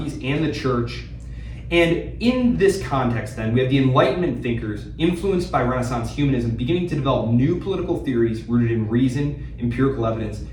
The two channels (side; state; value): both; identical; correlation 1.00